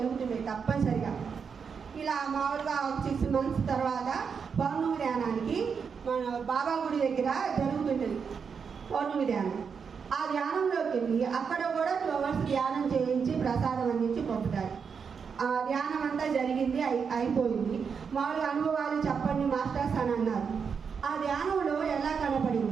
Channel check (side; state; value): left; quieter; 6.2 dB